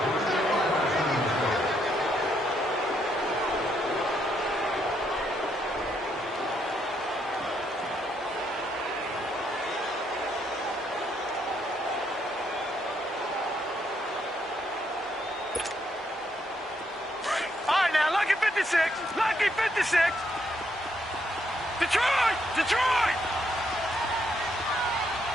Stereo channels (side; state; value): both; normal; correlation 0.75